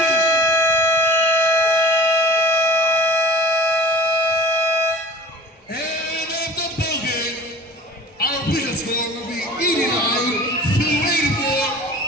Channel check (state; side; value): normal; both; correlation 0.41